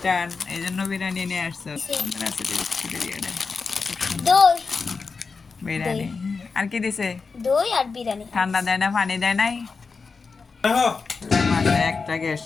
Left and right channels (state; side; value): quieter; right; 4.7 dB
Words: এই জন্য বিরিয়ানি নিয়ে আসছো। বিরিয়ানি আর কি দিছে? দই আর বিরিয়ানি। ঠান্ডা দেয় না, পানি দেয় নাই? মাসে একটা